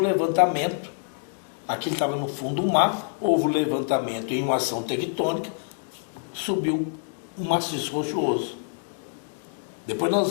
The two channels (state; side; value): silent; right; digital silence